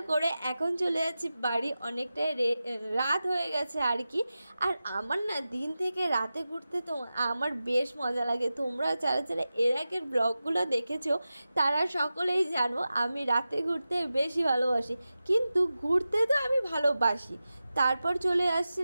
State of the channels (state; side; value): inverted; both; correlation -0.94